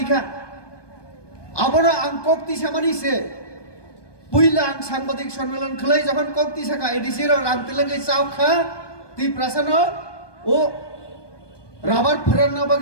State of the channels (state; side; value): late; right; 1.2 ms